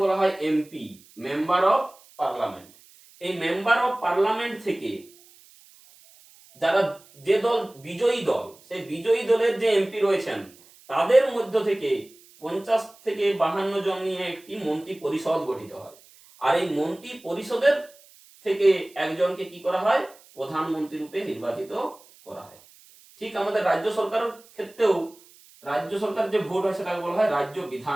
বলা হয় এমপি, মেম্বার অফ পার্লামেন্ট। এই মেম্বার অফ পার্লামেন্ট থেকে যারা যে দল বিজয়ী দল, সেই বিজয়ী দলের যে এমপি রয়েছেন তাদের মধ্য থেকে 50 থেকে 52 জন নিয়ে একটি মন্ত্রী পরিষদ গঠিত হয়। আর এই মন্ত্রী পরিষদের থেকে একজনকে কি করা হয়, প্রধানমন্ত্রী রূপে নির্বাচিত করা হয়। ঠিক আমাদের রাজ্য সরকারের ক্ষেত্রেও রাজ্য সরকার যে ভোট হয় সেটাকে বলা হয় রাজ্য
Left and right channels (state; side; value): noise; right; hiss, 26 dB below the sound